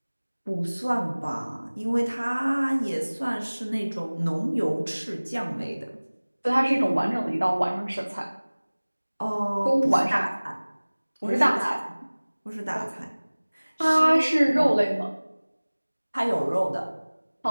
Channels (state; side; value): inverted; both; correlation -1.00